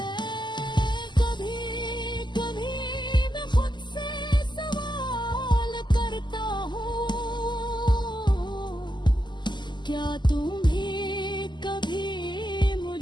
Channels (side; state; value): right; late; 0.21 ms